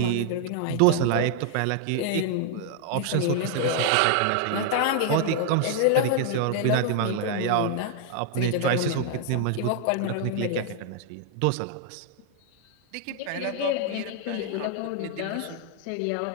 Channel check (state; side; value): different; both; correlation 0.00